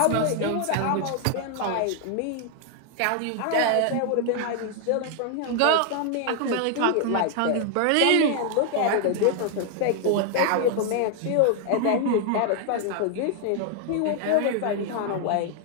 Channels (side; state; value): both; different; correlation 0.00